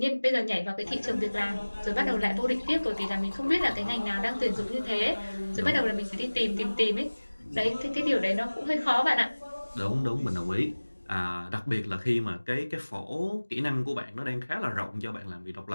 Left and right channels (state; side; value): inverted; both; correlation -1.00